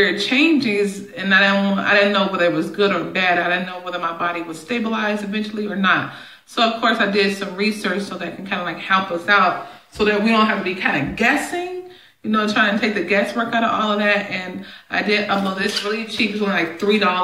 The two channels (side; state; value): both; identical; correlation 1.00